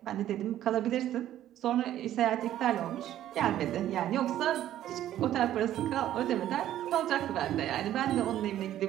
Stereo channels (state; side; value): quieter; left; 12.3 dB